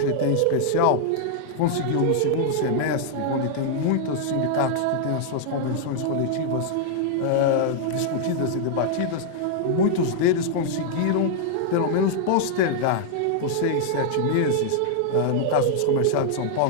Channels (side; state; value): both; different; correlation -0.01